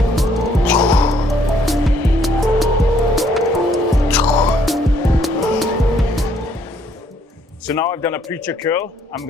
So now I've done a preacher curl. I'm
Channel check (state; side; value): normal; both; correlation 0.67